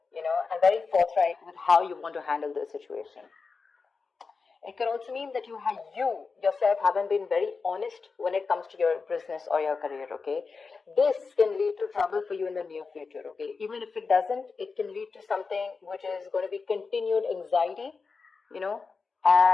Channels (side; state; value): right; quieter; 4.7 dB